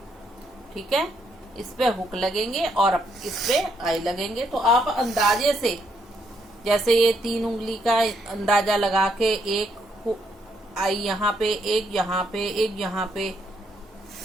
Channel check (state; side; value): normal; both; correlation 0.74